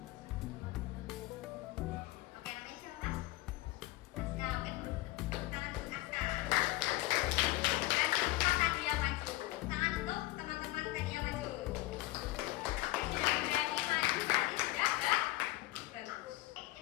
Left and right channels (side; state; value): right; quieter; 18.1 dB